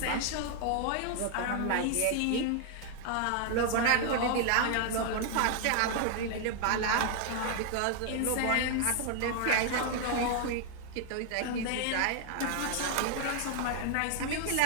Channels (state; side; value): different; both; correlation 0.00